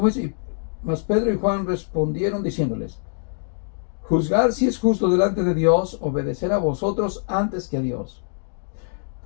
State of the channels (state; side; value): silent; right; digital silence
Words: es? Mas Pedro y Juan respondieron diciéndoles, juzgar si es justo delante de Dios, obedecer a vosotros antes que a Dios.